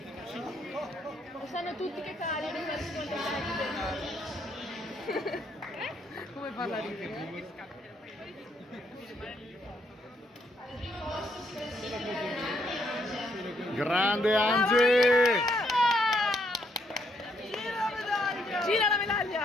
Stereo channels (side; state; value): both; normal; correlation 0.73